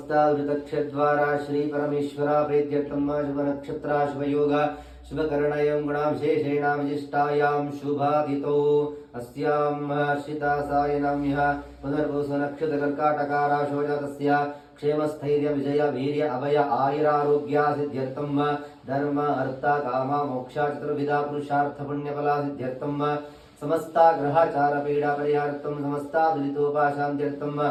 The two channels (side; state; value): both; identical; correlation 1.00